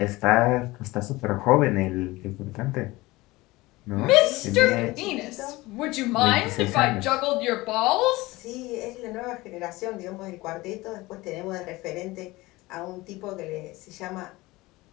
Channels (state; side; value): quieter; right; 20.5 dB